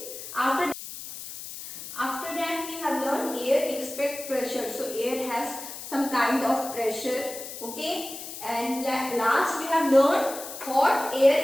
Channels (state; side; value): noise; left; hiss, 10 dB below the sound